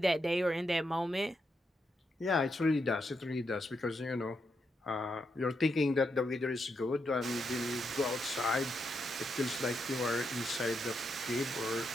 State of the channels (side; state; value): both; normal; correlation 0.82